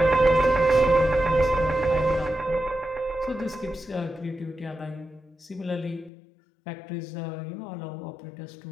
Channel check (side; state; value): right; drops out; at 6.1 s